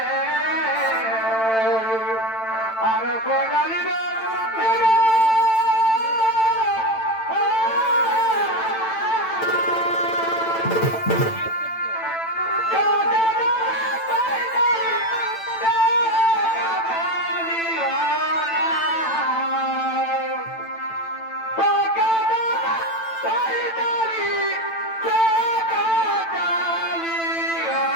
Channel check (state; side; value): late; right; 9.0 ms